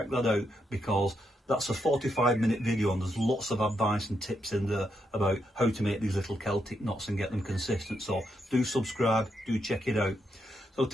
that out, because that's a 45-minute video and there's lots of advice and tips in there about how to make these little Celtic knots and get them consistent. So do subscribe, do check it out. So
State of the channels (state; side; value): normal; both; correlation 0.80